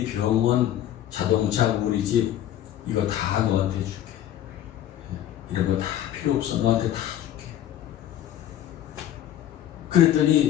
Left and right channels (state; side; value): quieter; right; 11.7 dB